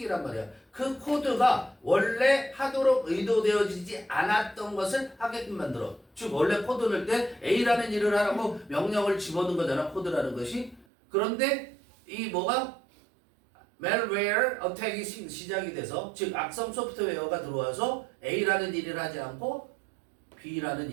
말이야. 그 코드가 원래 하도록 의도되어지지 않았던 것을 하게끔 만들어. 즉 원래 코드 넣을 때 A라는 일을 하라고 명령을 집어넣은 거잖아. 코드라는 것이. 그런데 이 뭐가 malware attack이 시작이 돼서 즉 악성 소프트웨어가 들어와서 A라는 일을 하지 않고 B라는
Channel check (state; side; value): drops out; left; at 10.9 s